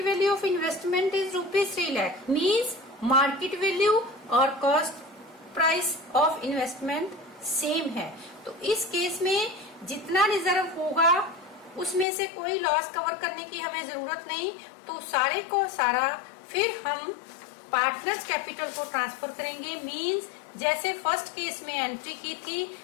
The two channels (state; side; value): drops out; right; at 12.1 s